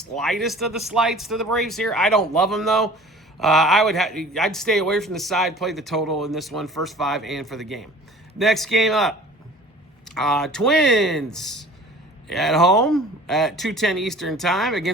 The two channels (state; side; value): normal; both; correlation 0.45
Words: of the slights to the Braves here. I don't love them though. I'd stay away from the side, play the total in this one, first 5 and for the game. Next game up, Twins at home at 2:10 Eastern time